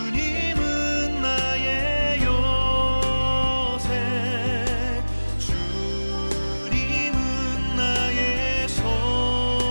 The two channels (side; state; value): both; inverted; correlation -1.00